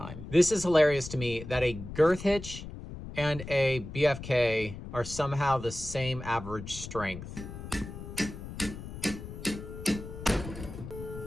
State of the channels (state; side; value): noise; left; rumble, 11 dB below the sound